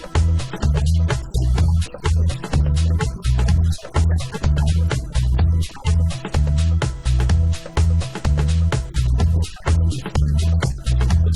peel back the tape about 2 inches and remove the black protective foam from the hooks on the visors. Open the door to install the top 2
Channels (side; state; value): both; identical; correlation 1.00